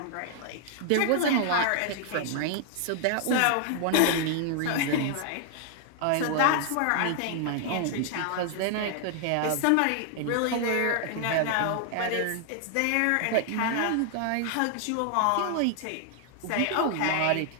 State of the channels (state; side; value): different; both; correlation 0.00